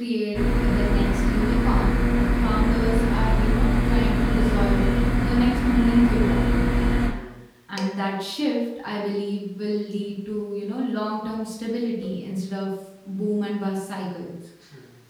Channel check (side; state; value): both; identical; correlation 1.00